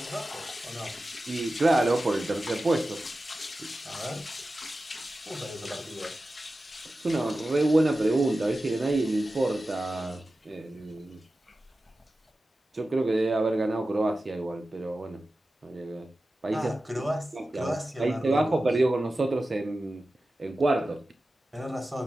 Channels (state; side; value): normal; both; correlation 0.94